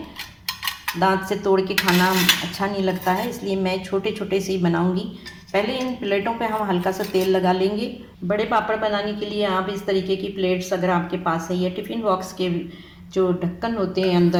दांत से तोड़ के खाना अच्छा नहीं लगता है, इसलिए मैं छोटे छोटे से ही बनाऊँगी। पहले इन प्लेटों पे हम हल्का सा तेल लगा लेंगे। बड़े पापड़ बनाने के लिए आप इस तरीके की प्लेट्स अगर आपके पास है, या टिफ़िन बॉक्स के जो ढक्कन होते हैं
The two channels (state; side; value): identical; both; correlation 1.00